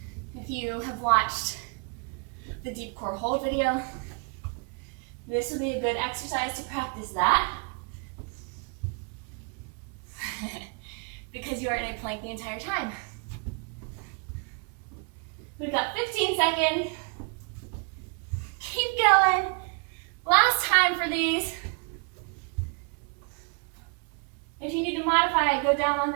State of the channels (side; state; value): left; quieter; 34.2 dB